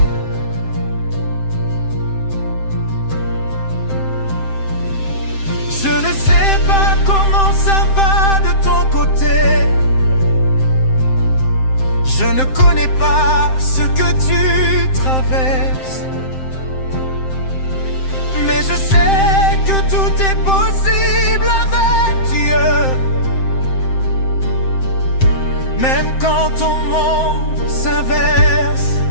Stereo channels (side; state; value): right; late; 7.7 ms